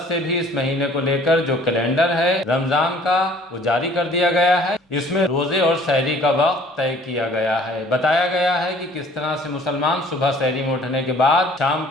سے بھی اس مہینے کو لے کر جو کیلنڈر ہے رمضان کا وہ جاری کر دیا گیا ہے۔ اس میں روزے اور سحری کا وقت طے کیا گیا ہے، بتایا گیا ہے کہ کس طرح سے مسلمان صبح سحری میں اٹھنے کے بعد شام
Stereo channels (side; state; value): both; normal; correlation 0.54